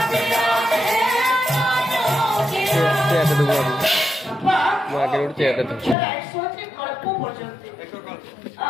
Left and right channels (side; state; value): right; drops out; at 6.0 s